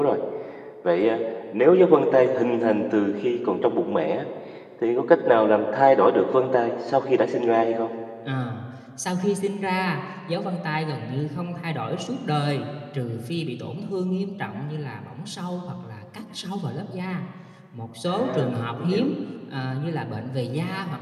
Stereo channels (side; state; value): both; identical; correlation 1.00